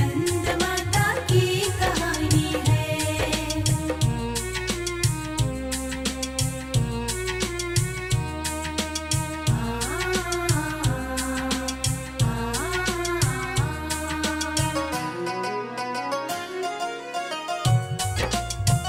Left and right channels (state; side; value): identical; both; correlation 1.00